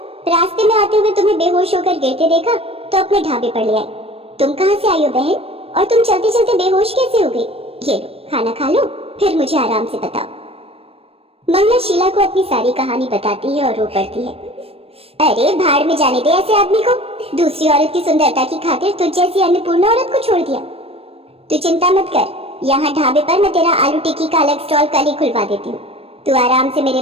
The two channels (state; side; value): late; left; 0.28 ms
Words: रास्ते में आते हुए तुम्हें बेहोश होकर गिरते देखा तो अपने ढाबे पर ले आई। तुम कहाँ से आई हो बहन? और तुम चलते चलते बेहोश कैसे हो गई? ये लो, खाना खा लो, फिर मुझे आराम से बताओ। मंगला शीला को अपनी सारी कहानी बताती है और रो पड़ती है। अरे भाड़ में जाने दे ऐसे आदमी को। दूसरी औरत की सुंदरता की खातिर तुझ जैसी अन्नपूर्णा औरत को छोड़ दिया। तू चिंता मत कर, यहाँ ढाबे पर मैं तेरा आलू टिक्की का अलग स्टॉल कल ही खुलवा देती हूँ। तू आराम से मेरे